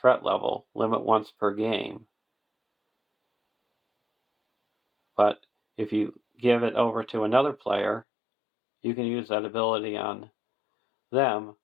threat level, limit once per game. But if you give it over to another player, you can use that ability on them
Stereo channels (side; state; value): right; drops out; at 8.1 s